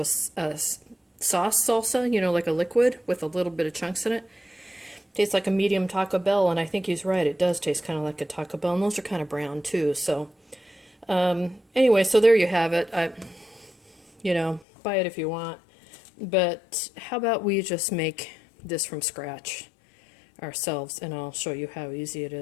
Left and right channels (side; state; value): right; drops out; at 14.7 s